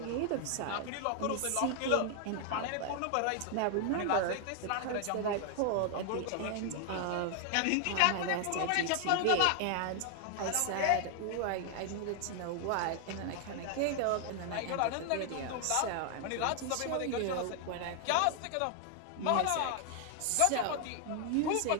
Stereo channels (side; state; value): both; different; correlation 0.00